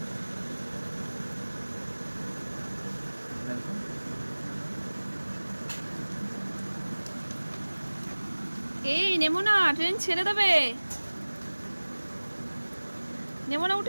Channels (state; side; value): inverted; both; correlation -1.00